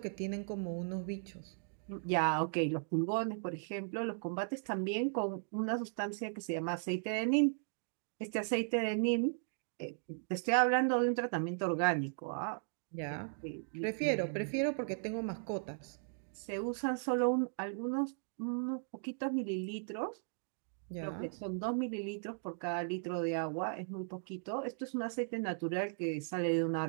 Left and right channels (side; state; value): left; silent; digital silence